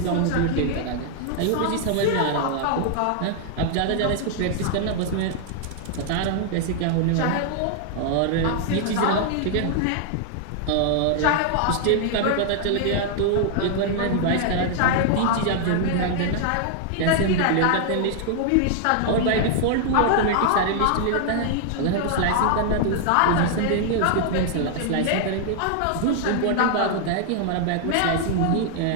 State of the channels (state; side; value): different; both; correlation 0.00